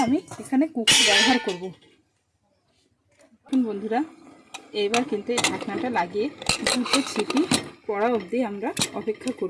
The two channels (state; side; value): identical; both; correlation 1.00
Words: আমি এখানে কুকার ব্যবহার করব। বন্ধুরা এবার কিন্তু এই ঢাকনাটা লাগিয়ে 2টো সিটি পড়া অবধি আমরা অপেক্ষা